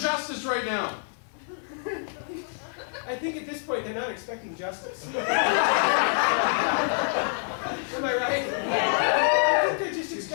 justice right now. I think at this point they're not expecting justice. Am I right? I think they're just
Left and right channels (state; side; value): silent; right; digital silence